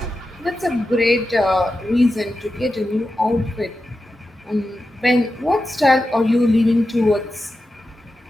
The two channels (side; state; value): both; normal; correlation 0.91